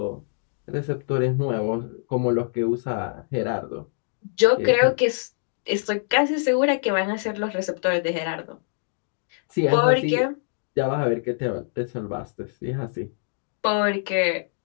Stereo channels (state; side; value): silent; right; digital silence